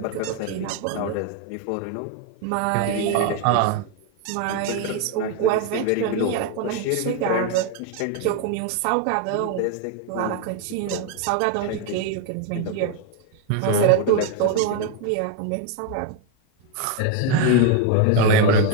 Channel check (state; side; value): different; both; correlation 0.01